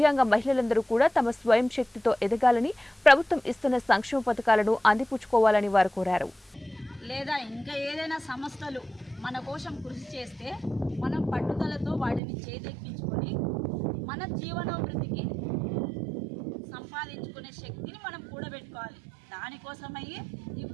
మహిళలందరూ కూడా తమ స్వయం శక్తితో ఎదగాలని, ప్రభుత్వం ఇస్తున్న సంక్షేమ పథకాలను అందిపుచ్చుకోవాలని వారు కోరారు. లేదా ఇంకా ఏదైనా సంస్థలు మన కోసం కృషి చేస్తే మనం పట్టుదలతో వాటిని చేదెక్కించుకొని మన జీవనోభివృద్ధికి సంపాదించుకునే శక్తిని మనం కూడబెట్టుకోవాలి. దానికోసమయ్యే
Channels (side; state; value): left; drops out; at 12.2 s